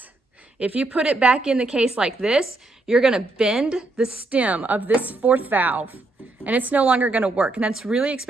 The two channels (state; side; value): quieter; left; 3.0 dB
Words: if you put it back in the case like this, you're gonna bend the stem of this 4th valve and it's no longer gonna work. And that's really